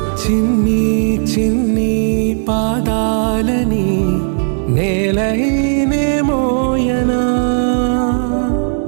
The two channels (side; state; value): left; silent; digital silence